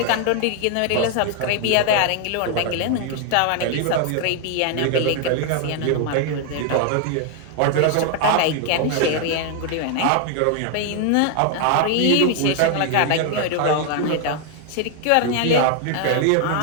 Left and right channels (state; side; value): different; both; correlation 0.00